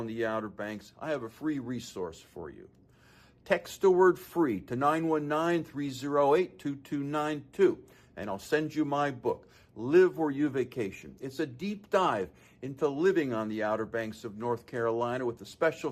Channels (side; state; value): both; identical; correlation 1.00